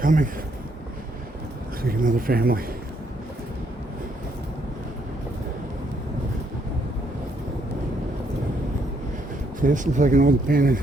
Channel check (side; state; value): both; normal; correlation 0.72